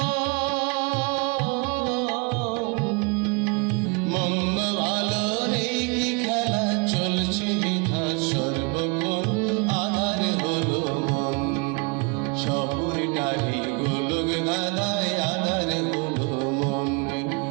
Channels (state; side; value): quieter; left; 31.7 dB